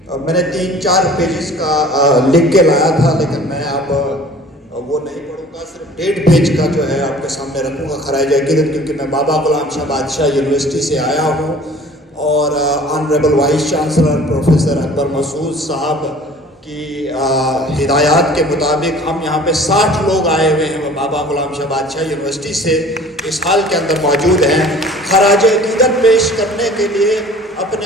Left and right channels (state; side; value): normal; both; correlation 0.48